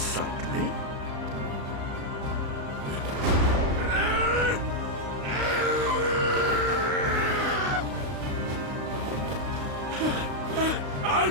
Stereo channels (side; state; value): left; late; 35 ms